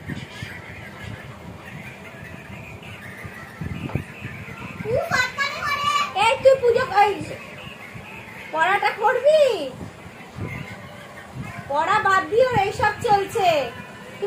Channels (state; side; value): identical; both; correlation 1.00